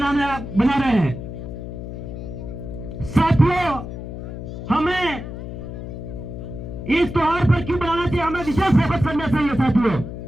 रहे हैं। साथियों, हमें इस त्योहार पर क्यों बनाना चाहिए, हमें विशेष फोकस करना चाहिए। साथियों,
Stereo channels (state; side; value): noise; left; hum, 9 dB below the sound